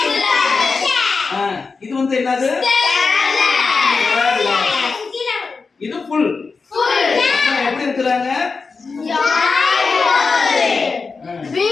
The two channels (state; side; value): quieter; right; 4.5 dB